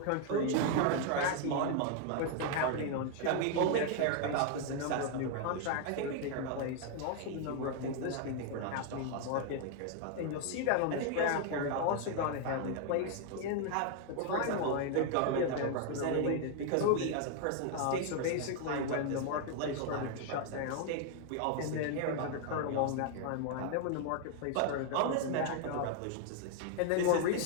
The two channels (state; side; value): different; both; correlation 0.00